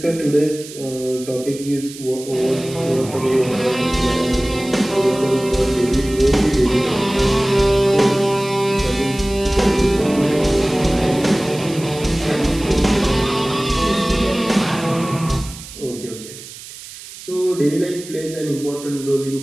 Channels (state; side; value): noise; right; hiss, 15 dB below the sound